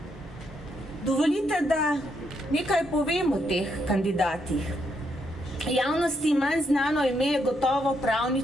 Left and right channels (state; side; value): normal; both; correlation 0.77